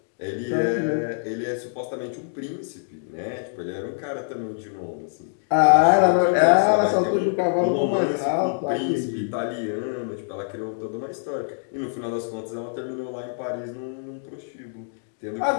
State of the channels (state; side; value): silent; right; digital silence